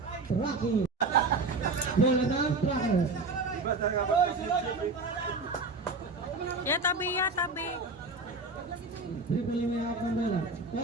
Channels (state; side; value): quieter; left; 3.5 dB